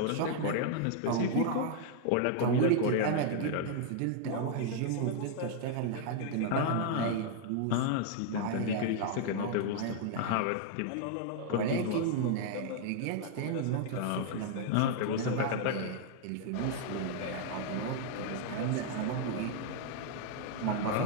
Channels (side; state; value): both; different; correlation -0.01